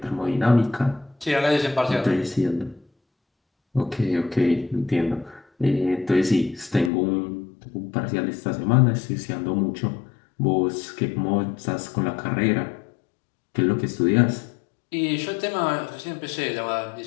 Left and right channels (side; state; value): right; drops out; at 6.9 s